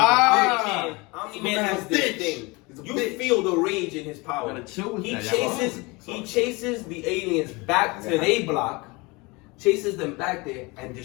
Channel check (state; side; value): quieter; right; 25.6 dB